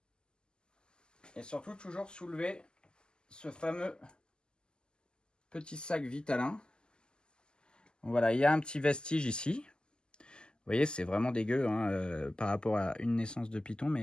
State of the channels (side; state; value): right; late; 0.047 ms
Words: Et surtout, toujours soulever ce fameux petit sac Vitalin. Voilà, il y a un petit vestige ici. Vous voyez, c'est vraiment dégueu hein, par rapport à une naissance de python.